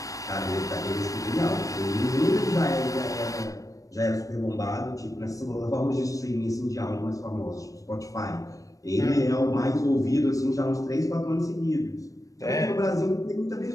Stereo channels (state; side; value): late; right; 0.16 ms